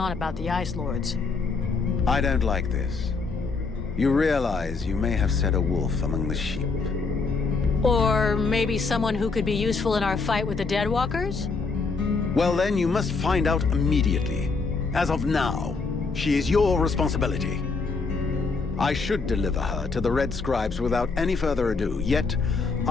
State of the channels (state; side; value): quieter; right; 4.4 dB